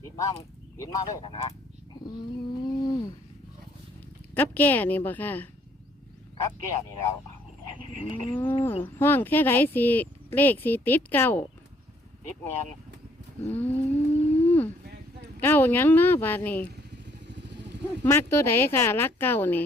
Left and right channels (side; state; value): both; normal; correlation 0.65